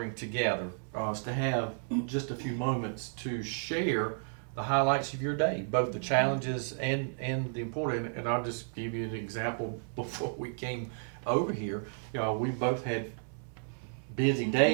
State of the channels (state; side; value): silent; left; 56 dB below the other